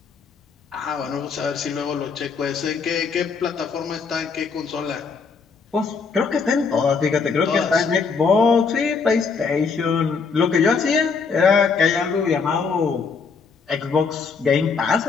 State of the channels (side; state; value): right; quieter; 5.2 dB